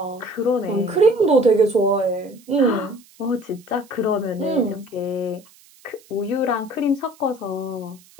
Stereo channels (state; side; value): noise; right; hiss, 27 dB below the sound